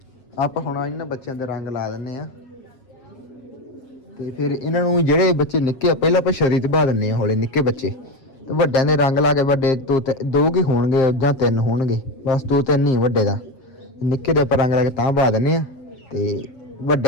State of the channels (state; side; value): late; right; 7.6 ms